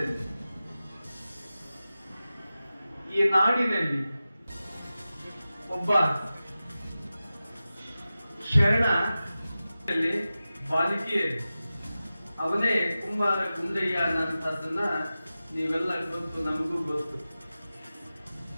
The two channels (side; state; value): both; inverted; correlation -0.95